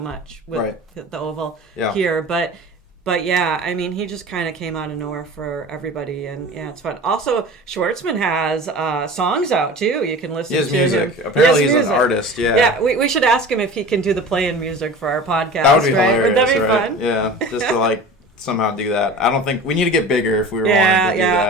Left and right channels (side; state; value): both; normal; correlation 0.37